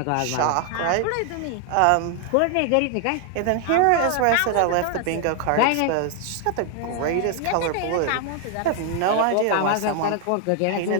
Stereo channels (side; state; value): both; different; correlation 0.00